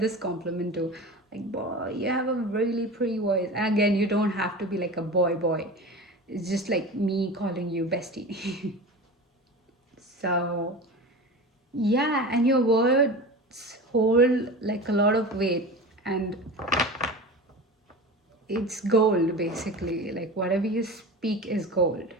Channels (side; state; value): both; normal; correlation 0.31